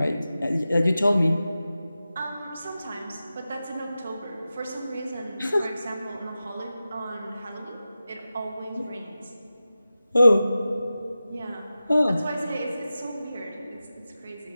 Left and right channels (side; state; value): both; inverted; correlation -0.94